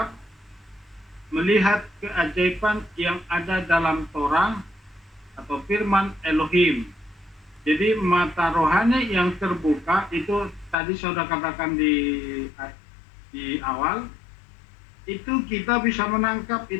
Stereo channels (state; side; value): drops out; right; at 10.8 s